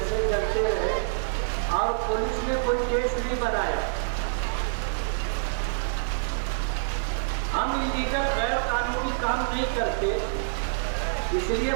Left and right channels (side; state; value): left; silent; 60 dB below the other